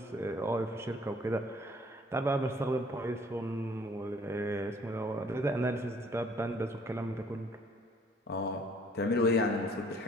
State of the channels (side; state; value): both; normal; correlation 0.58